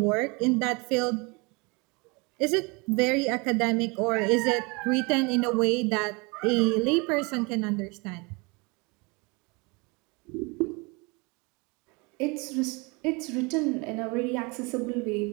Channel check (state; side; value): quieter; left; 28.5 dB